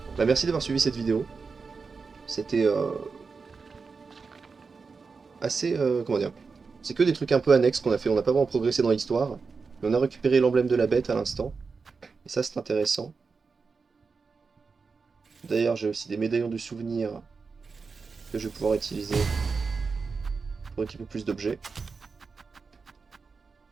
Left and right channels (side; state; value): left; quieter; 4.8 dB